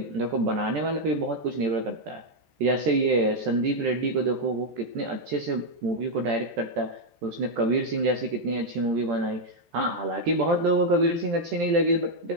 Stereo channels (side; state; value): left; late; 14 ms